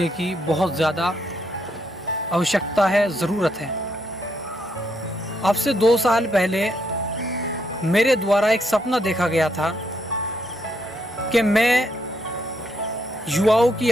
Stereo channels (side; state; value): both; normal; correlation 0.76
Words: की बहुत ज़्यादा आवश्यकता है, ज़रूरत है। अब से 2 साल पहले मेरे द्वारा एक सपना देखा गया था कि मैं युवाओं की